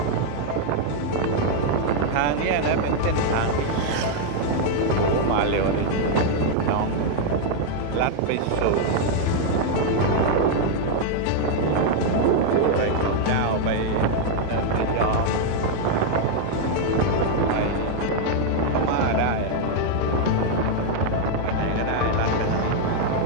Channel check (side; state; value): both; different; correlation 0.00